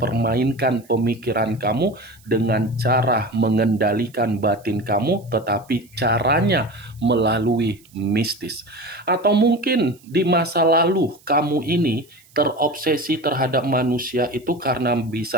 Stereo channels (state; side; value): noise; right; hiss, 28 dB below the sound